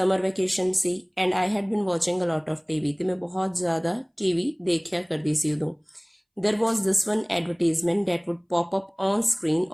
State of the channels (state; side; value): identical; both; correlation 1.00